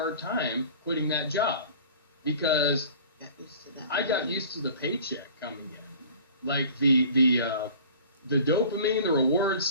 time quitting that job because I got used to the paycheck coming in. Like the dopamine, the reward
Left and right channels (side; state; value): both; inverted; correlation -0.44